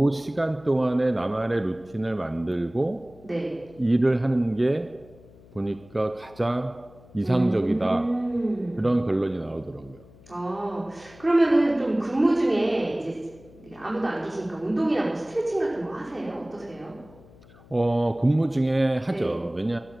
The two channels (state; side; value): noise; left; hum, 24 dB below the sound